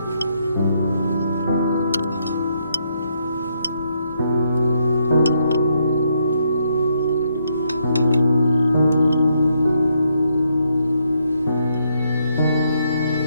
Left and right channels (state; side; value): inverted; both; correlation -0.76